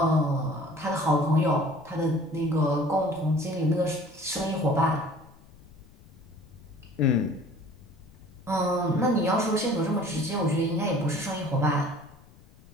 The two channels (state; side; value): noise; left; rumble, 25 dB below the sound